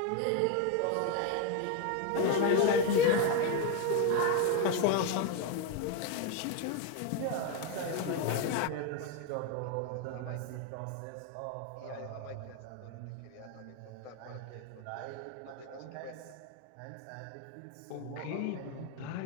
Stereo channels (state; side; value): different; both; correlation 0.02